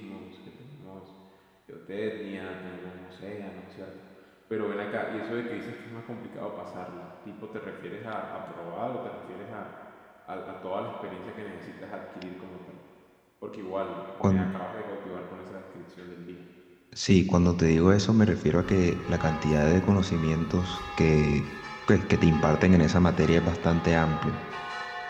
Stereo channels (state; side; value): identical; both; correlation 1.00